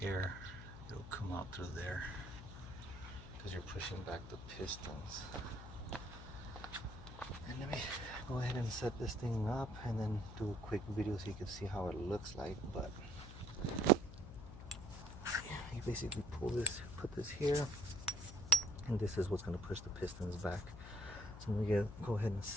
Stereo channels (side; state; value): left; noise; hum, 12 dB below the sound